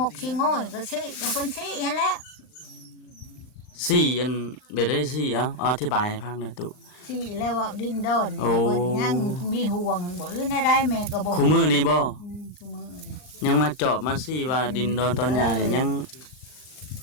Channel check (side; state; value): right; late; 40 ms